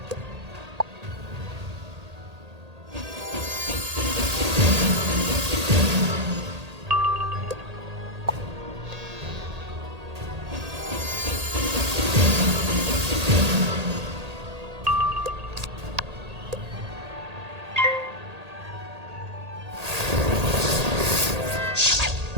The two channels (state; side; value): late; left; 1.8 ms